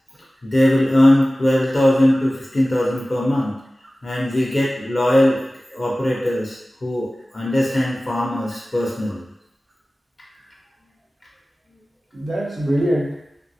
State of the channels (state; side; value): normal; both; correlation 0.97